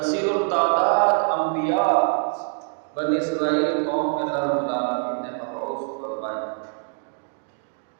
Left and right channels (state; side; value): silent; left; 57 dB below the other